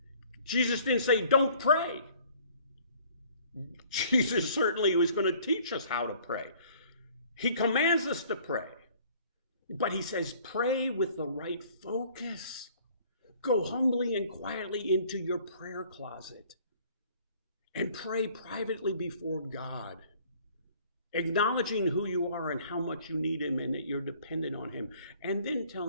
Jesus didn't say, don't pray. Jesus certainly was going to teach us how to pray. He commands us to pray. But he says, pray with the right focus. Go humbly and quietly into your prayer closet and pray privately before God, acknowledging who you are and how much you need him and that you're dependent on him. And then tell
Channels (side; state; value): both; inverted; correlation -0.56